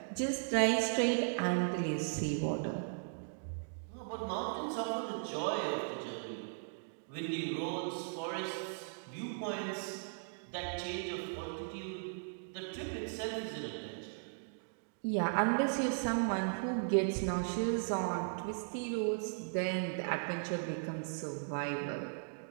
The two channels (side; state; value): left; silent; digital silence